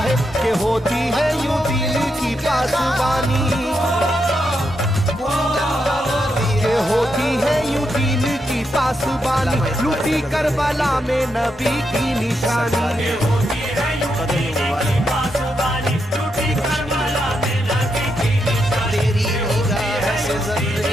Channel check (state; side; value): noise; right; rumble, 25 dB below the sound